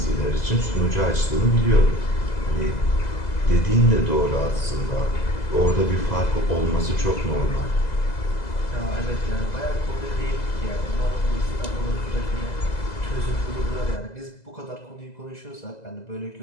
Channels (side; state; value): right; late; 2.0 ms